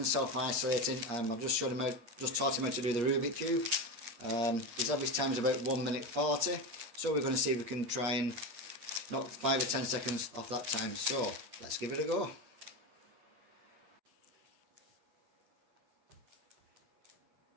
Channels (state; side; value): late; left; 8.4 ms